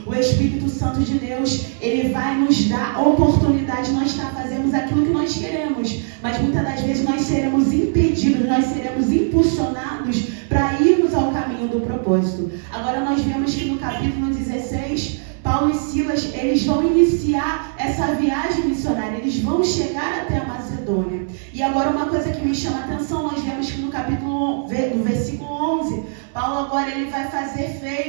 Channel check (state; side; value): silent; left; 65 dB below the other